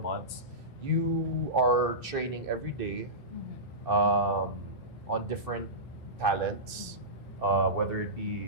you are training every day on different talents, whether it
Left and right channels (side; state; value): both; normal; correlation -0.18